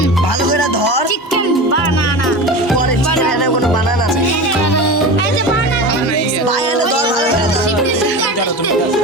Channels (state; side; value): normal; both; correlation 0.28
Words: ভালো করে ধর। চিকেন বানানা পরে চিকেন এনে কোনো বানানা নেই। ভাই এনে ধর ভালো করে ধর।